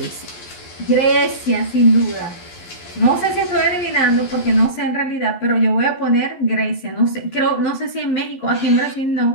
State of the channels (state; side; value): late; right; 12 ms